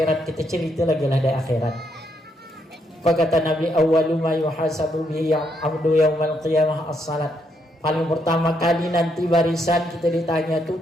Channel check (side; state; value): both; normal; correlation 0.76